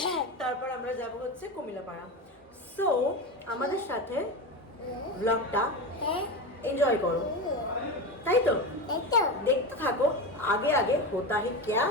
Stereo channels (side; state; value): both; normal; correlation 0.21